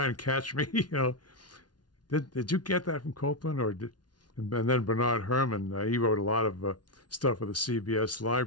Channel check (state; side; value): late; right; 0.69 ms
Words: and catch me, you know, did you get that from Copland? And then Bernard Herrmann, he wrote a lot of stuff for the CBS